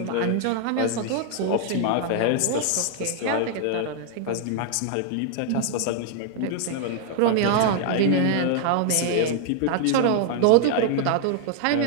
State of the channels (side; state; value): both; different; correlation 0.00